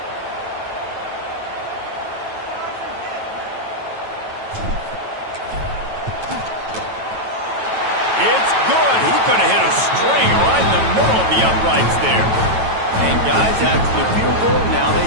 It's good. He could have hit a string right in the middle of the uprights there. And guys, after the field goal, now they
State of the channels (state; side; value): late; left; 9.1 ms